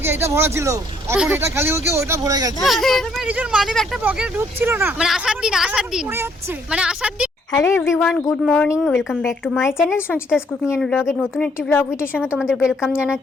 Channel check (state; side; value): normal; both; correlation 0.67